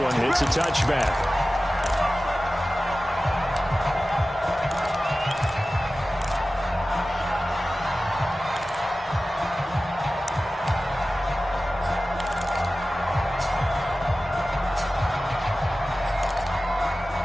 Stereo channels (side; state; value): both; normal; correlation 0.96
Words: It's a touchback.